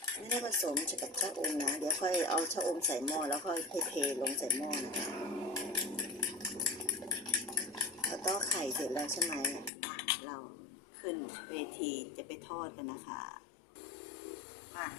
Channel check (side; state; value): right; drops out; at 9.7 s